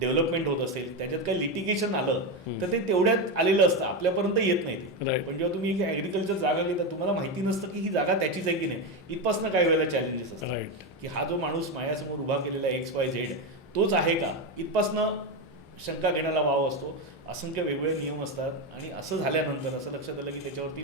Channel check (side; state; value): both; normal; correlation 0.12